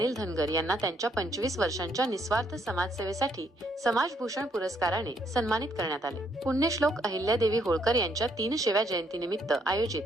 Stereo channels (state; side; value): normal; both; correlation 0.71